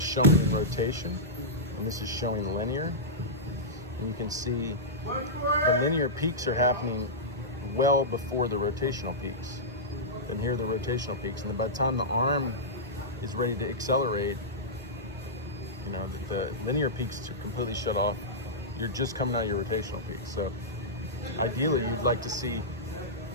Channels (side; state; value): both; normal; correlation -0.13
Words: rotation, and this is showing linear. And you can see the linear peaks are happening well before the rotational peaks. And here are the rotational peaks. And by the time the arm is ready to accelerate, you know, the linear peaks are completely shut off. You're just coming out of your rotational peak. So ideally, you'd like to see